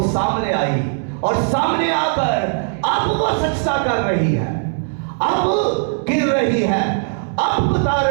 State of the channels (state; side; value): silent; left; digital silence